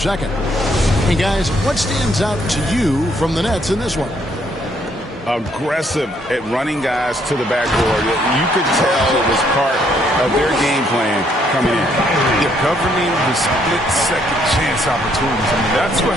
Hey, guys, what stands out to you from the Nets in this one? Aggressive at running guys to the backboard. You could tell it was part of their game plan coming in. They're governing the split-second chance opportunities. I mean, that's what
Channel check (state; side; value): normal; both; correlation 0.69